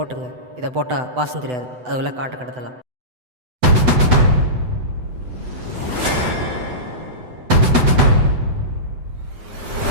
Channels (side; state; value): left; late; 8.0 ms